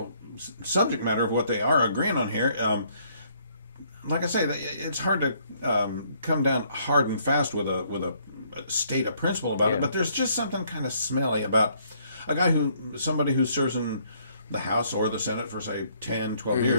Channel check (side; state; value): both; inverted; correlation -0.66